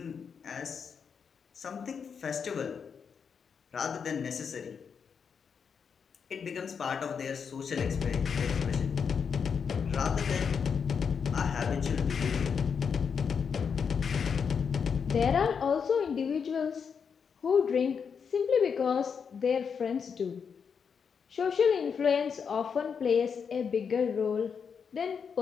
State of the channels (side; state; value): right; quieter; 6.4 dB